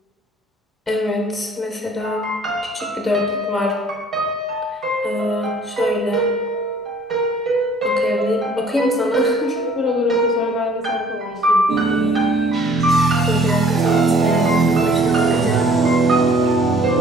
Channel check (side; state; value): both; normal; correlation 0.56